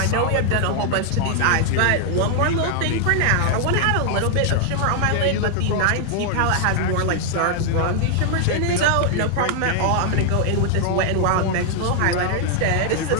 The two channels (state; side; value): different; both; correlation 0.00